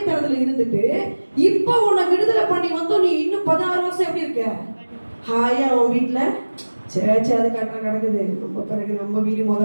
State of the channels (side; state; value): both; inverted; correlation -1.00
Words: இருந்துட்டு இப்ப உன்னை விடுதலை பண்ணி வந்தோம், நீ இன்னும் 16 வருஷம் எப்படி இருக்க, ஹாயா உன் வீட்டுல சேச்ச அது கட்ட கிடக்குது. நம்ம பிறகு நம்ம வீடு